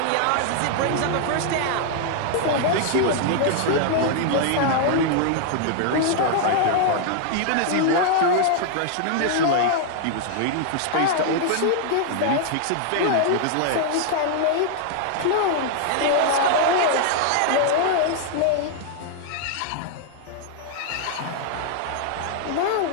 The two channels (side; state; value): both; different; correlation 0.00